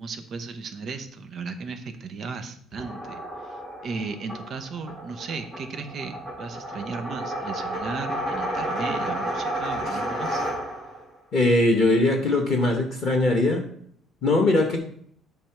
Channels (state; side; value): normal; both; correlation 0.65